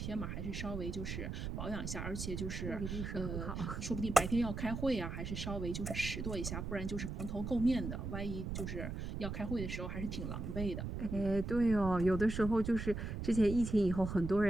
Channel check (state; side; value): noise; right; rumble, 5 dB below the sound